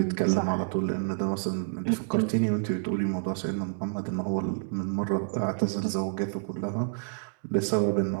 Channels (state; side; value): silent; left; digital silence